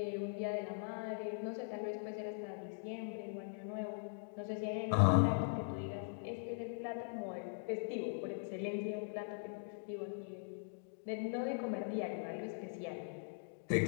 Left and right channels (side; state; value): right; silent; digital silence